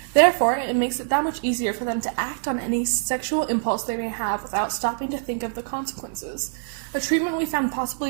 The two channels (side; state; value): left; silent; digital silence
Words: Therefore, it makes it that much easier for them to act on any sexual impulse they may have without stopping to think of the consequences. A treatment we found